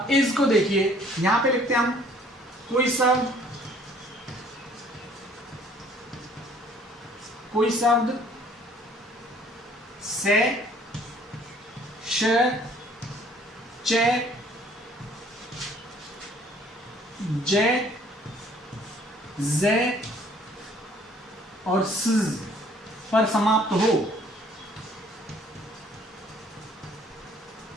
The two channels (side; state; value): both; normal; correlation 0.58